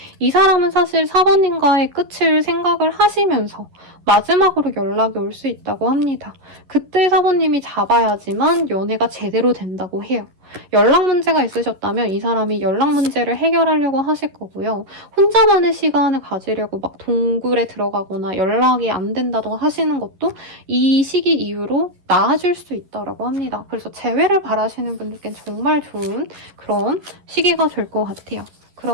이 사람은 사실 사부님과의 끝을 생각을 하시면서 마지막으로 연락이 올 수 있다고 합니다. 그때 사부님이 잡아야지만 연애가 제대로 된다고 해요. 연락 문제가 있으셨다면 이 사람이 연락 문제를 해결하려고 하실 거고요. 혼자만의 시간을 가지려고 막 동굴에 들어가거나 연락이 안 된다고 하시는 것도 이 시기 이후로 나아질 수 있다고 합니다. 그래서 재회를 바라시는 분들께는 정말 좋은 그런 시기가 될 것 같아요.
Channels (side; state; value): left; late; 11 ms